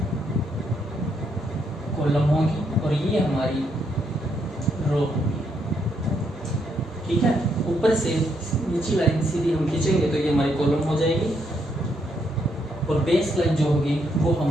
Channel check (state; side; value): normal; both; correlation 0.76